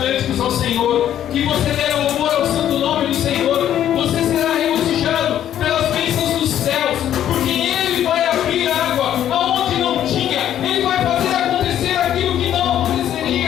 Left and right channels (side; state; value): right; quieter; 10.9 dB